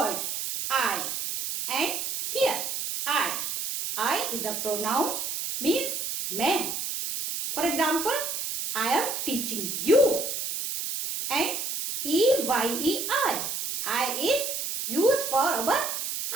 I and here, I. I is a pronoun, means मैं. For example, I am teaching you. And E-Y-E-I. I is used for our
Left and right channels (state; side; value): noise; right; hiss, 3 dB below the sound